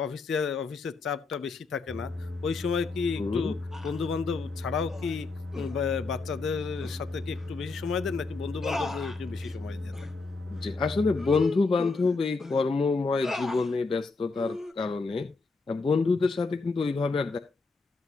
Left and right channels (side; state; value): right; quieter; 4.0 dB